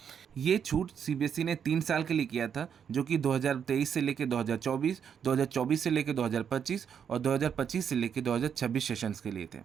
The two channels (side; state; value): left; quieter; 7.8 dB